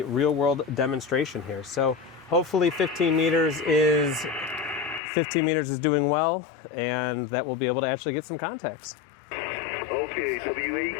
real-world demonstration here. So hopefully 15 meters is doing well, and that we'll be able to actually get some contacts. Okay,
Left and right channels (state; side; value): drops out; right; at 5.0 s